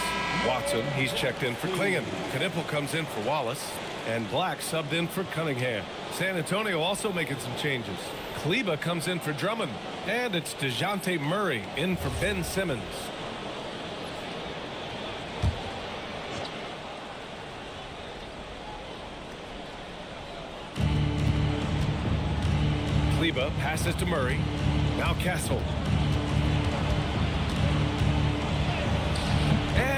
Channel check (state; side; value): identical; both; correlation 1.00